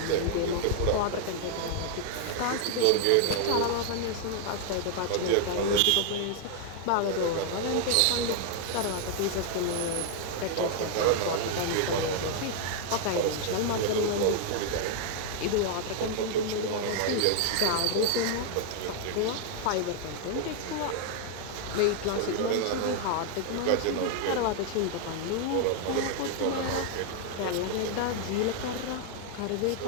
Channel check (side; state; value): both; different; correlation 0.00